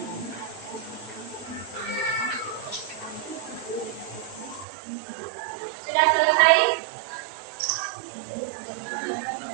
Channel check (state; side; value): drops out; left; at 4.7 s